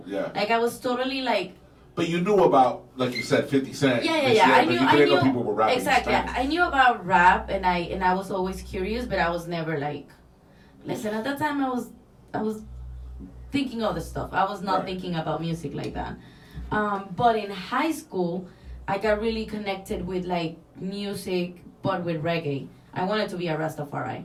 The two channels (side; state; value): both; identical; correlation 1.00